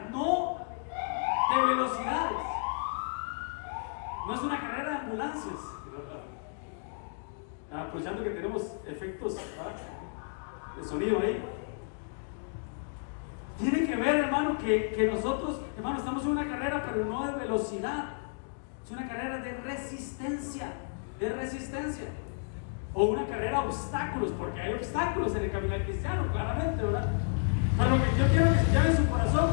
no de velocidades, no es una carrera de ambulancias. Aprovechando que tenemos efectos, ¿verdad?, de sonido ahí. Tiene que ver, hermano, que nosotros Hermano, estamos en una carrera, pero no de velocidad. Es una carrera de resistencia. De resistencia. O una carrera de obstáculos, porque hay obstáculos en el camino cristiano, claramente, ¿verdad? Pero lo que yo quiero que se lleve en su corazón,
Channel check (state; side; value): silent; right; digital silence